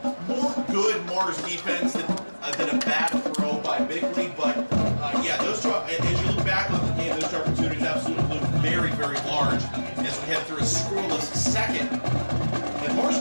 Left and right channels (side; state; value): both; inverted; correlation -1.00